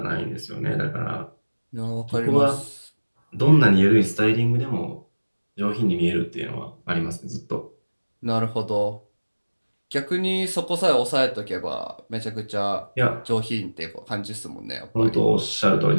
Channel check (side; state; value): both; inverted; correlation -1.00